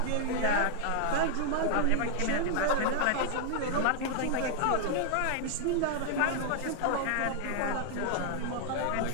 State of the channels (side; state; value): both; different; correlation 0.00